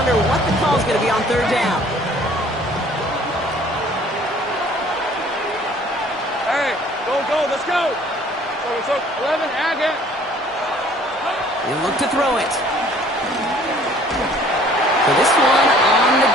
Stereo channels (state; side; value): normal; both; correlation 0.55